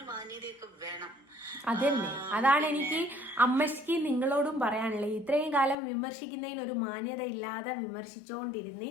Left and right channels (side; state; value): right; drops out; at 5.8 s